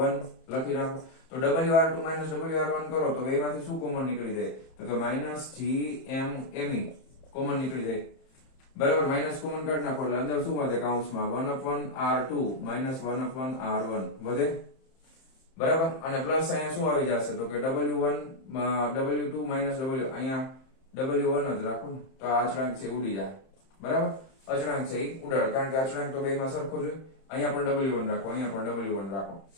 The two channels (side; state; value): right; late; 31 ms